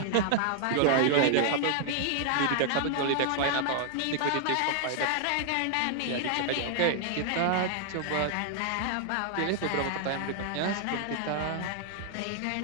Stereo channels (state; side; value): different; both; correlation 0.00